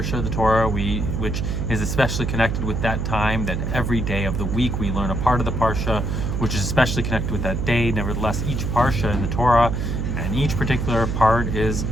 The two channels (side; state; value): right; noise; hum, 1 dB below the sound